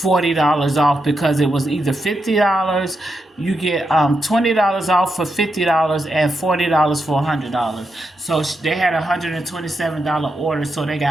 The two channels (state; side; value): normal; both; correlation 0.85